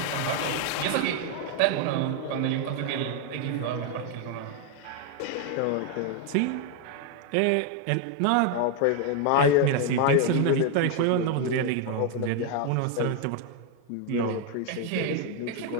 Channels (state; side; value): different; both; correlation 0.01